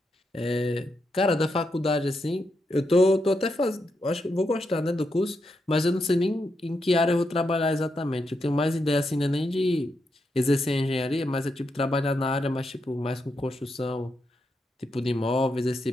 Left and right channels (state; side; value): normal; both; correlation 0.83